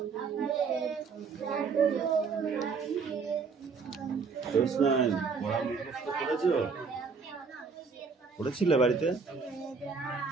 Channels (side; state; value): left; quieter; 5.1 dB